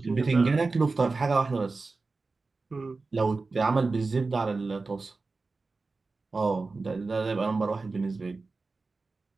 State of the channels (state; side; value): quieter; left; 3.8 dB